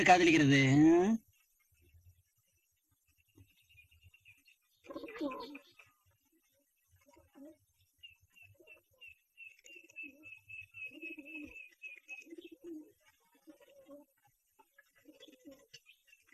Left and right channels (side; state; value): both; identical; correlation 1.00